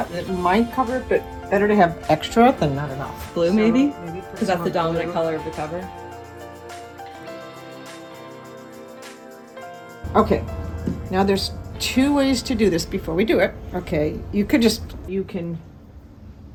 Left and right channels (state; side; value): identical; both; correlation 1.00